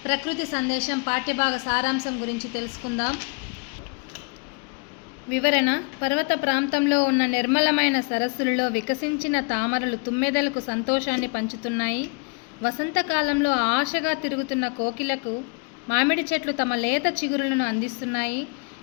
ప్రకృతి సందేశం పాఠ్యభాగ సారాంశం గురించి తెలుసుకుందాం. వివరణ: పర్వత ప్రాంతంలో ఉన్న నిర్మలమైన సరస్సులలో వికసించిన తామరలు తుమ్మెదలకు సంతోషాన్ని పంచుతున్నాయి. వసంతకాలంలో ఆశగా తిరుగుతున్న కోకిలకు మామిడి చెట్లు తమ లేత చిగురులను అందిస్తున్నాయి.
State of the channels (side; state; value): right; quieter; 33.9 dB